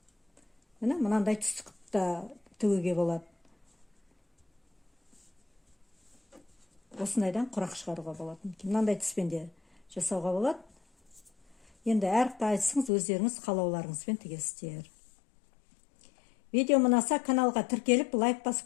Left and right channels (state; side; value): drops out; right; at 12.9 s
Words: Мынандай түстікті тігуге болады. Осындайдан құрақ шығаруға болады. Мынандай түспен де жасауға болады. Енді әр қайсыңыз өздеріңіз қалауларыңызбен тігесіздер. Видео ұнаса каналға тіркеліп, лайк